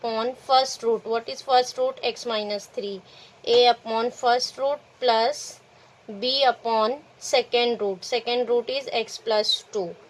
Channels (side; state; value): both; identical; correlation 1.00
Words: first root. What is first root? X minus 3. A upon first root plus b upon second root. Second root is x plus 2.